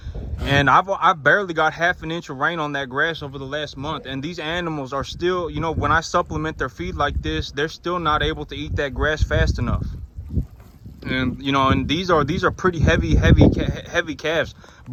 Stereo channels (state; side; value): identical; both; correlation 1.00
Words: And I've barely got half an inch of rain on that grass over the last month, and these animals are still, you know, when I supplement their feed like this, they're still not able to eat that grass fast enough. And you know, and these are pretty heavy calves,